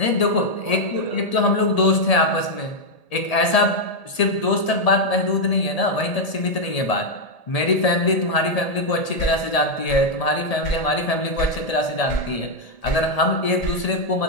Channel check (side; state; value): right; late; 1.8 ms